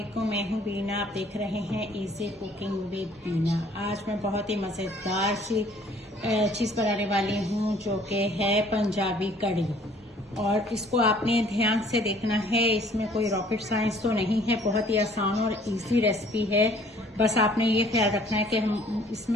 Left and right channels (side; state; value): both; normal; correlation 0.57